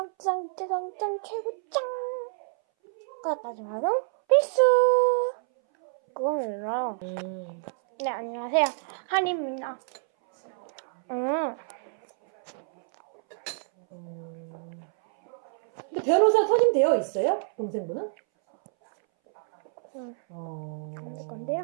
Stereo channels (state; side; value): silent; left; 60 dB below the other